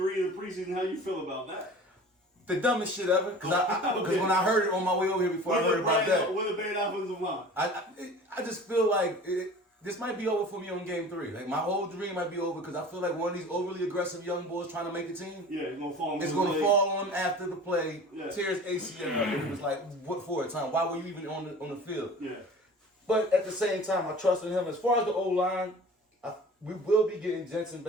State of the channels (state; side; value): normal; both; correlation 0.42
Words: of the preseason. How you feel about that? the dumbest shit ever. Because when I heard it on my way over here before I heard about that, With a bad offensive line. I just feel like this might be over for me on Game 3. Like my whole dream might be over because I feel like one of these overly aggressive young boys trying to make the team. Yeah, it's gonna fall. It's gonna fall on him after the play. Yeah. Tears ACL up, and it was like, what for? Time? Why were you even on the field? Yeah. But at the same time, I trust in him. As far as the O-line, we will be getting Jensen